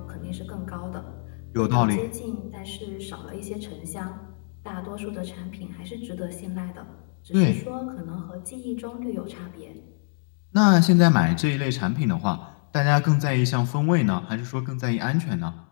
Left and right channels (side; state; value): right; silent; 61 dB below the other